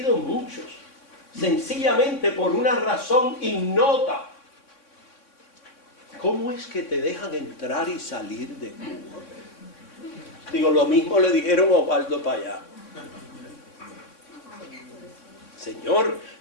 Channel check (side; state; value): right; late; 3.6 ms